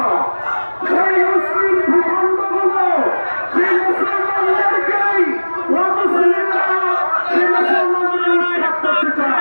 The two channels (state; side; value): inverted; both; correlation -1.00